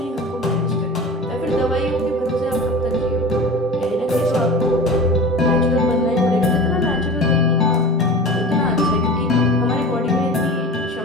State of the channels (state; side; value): normal; both; correlation 0.34